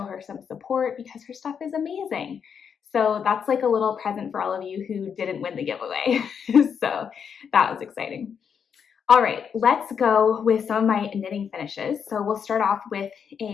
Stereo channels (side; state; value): right; quieter; 7.1 dB